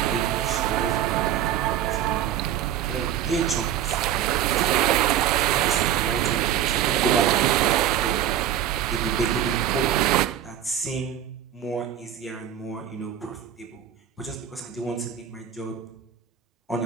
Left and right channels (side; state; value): left; quieter; 10.3 dB